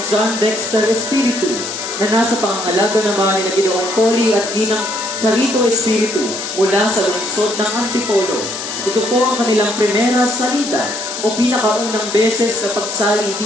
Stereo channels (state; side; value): noise; left; hiss, 7 dB below the sound